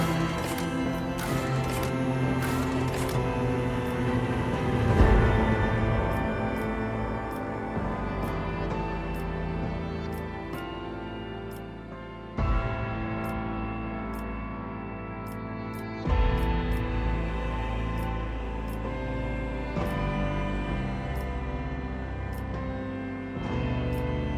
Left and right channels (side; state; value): both; identical; correlation 1.00